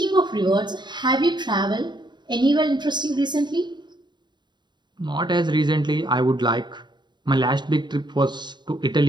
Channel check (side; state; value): left; late; 0.22 ms